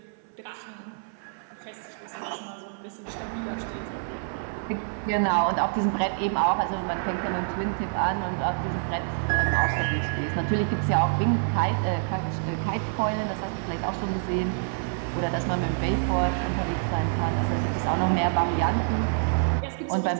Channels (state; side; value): silent; left; 60 dB below the other